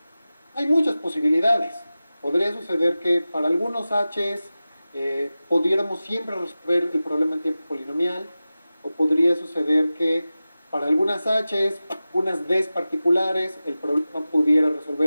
Hay muchas posibilidades. Podría suceder que para algunos H's pudiéramos siempre resolver el problema en tiempo polinomial, o podría suceder que para algunas H's, unas D's particulares, el problema pudiera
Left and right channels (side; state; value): both; inverted; correlation -0.95